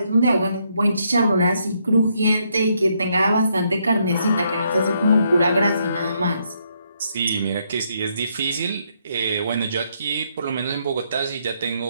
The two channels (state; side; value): inverted; both; correlation -0.74